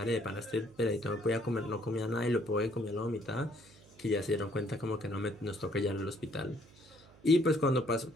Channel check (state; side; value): noise; right; hum, 25 dB below the sound